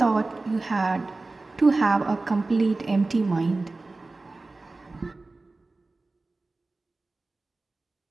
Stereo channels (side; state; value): left; quieter; 3.3 dB